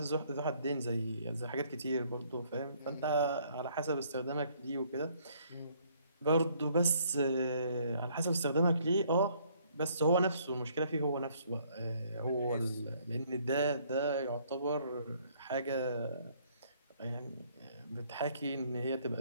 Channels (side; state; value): both; inverted; correlation -0.64